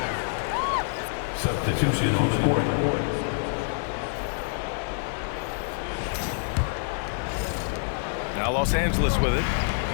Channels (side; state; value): right; silent; 55 dB below the other